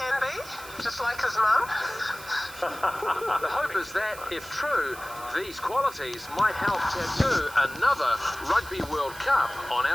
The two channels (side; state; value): right; noise; hiss, 16 dB below the sound